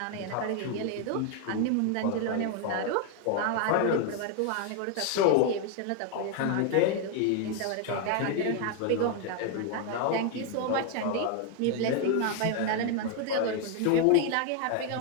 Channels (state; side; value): different; both; correlation 0.00